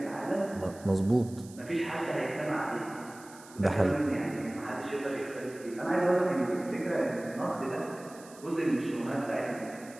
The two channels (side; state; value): right; noise; hiss, 21 dB below the sound